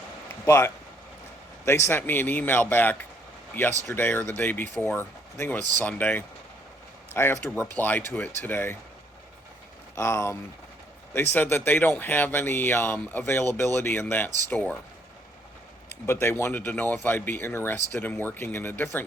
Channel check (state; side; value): normal; both; correlation 0.67